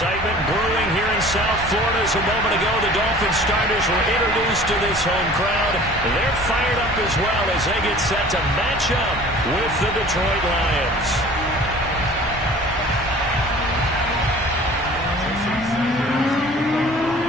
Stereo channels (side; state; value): both; normal; correlation 0.46